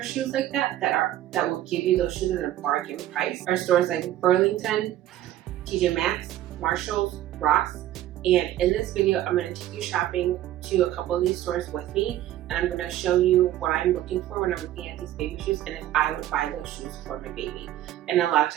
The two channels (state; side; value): quieter; left; 13.3 dB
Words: shoes like that will give you those shoes at a bargain price are stores like Burlington, TJ Maxx, Marshalls, Ross. And in this video, I'm going to take you shopping to a couple of these stores with me, and I'm going to show you what I'm looking for when I'm looking at these baby shoes and if I would buy those shoes for my baby. And a lot of